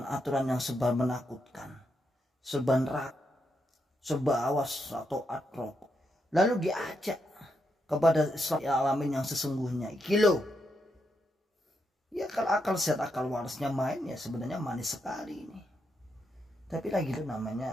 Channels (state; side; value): normal; both; correlation 0.82